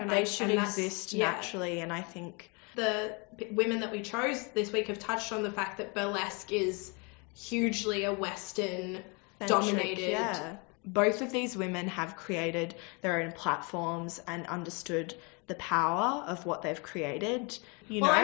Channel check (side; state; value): right; quieter; 31.4 dB